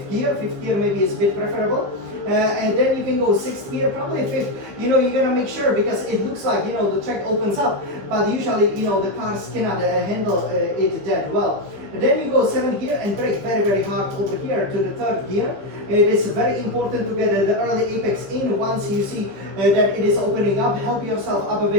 gear, gear. Fifth gear maybe is a bit preferable. And then you can go sixth gear, probably fifth. You know, you gotta make sure because it looks like, you know, the track opens up, but usually, you know, the cars cannot handle it that well. And then you go seventh gear and brake very hard over here to the third gear. It is very important to get the early apex in once you see that it is opening up. Help yourself up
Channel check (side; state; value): left; late; 15 ms